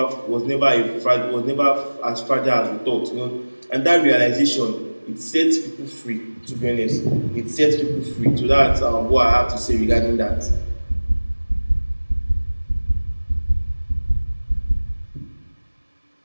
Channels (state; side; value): inverted; both; correlation -1.00